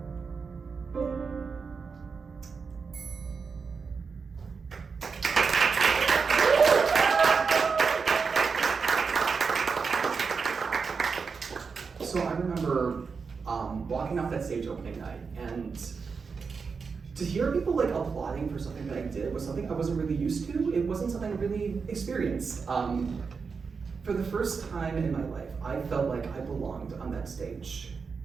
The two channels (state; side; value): quieter; left; 5.3 dB